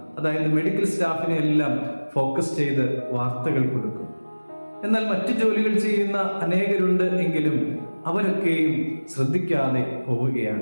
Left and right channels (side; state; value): both; inverted; correlation -1.00